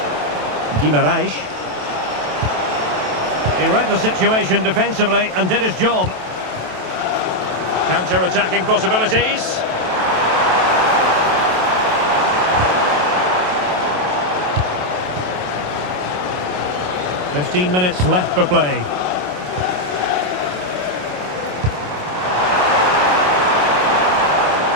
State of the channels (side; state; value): left; late; 27 ms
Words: Guimaraes. He read the situation defensively and did his job. Counter-attacking possibilities. 15 minutes left for play.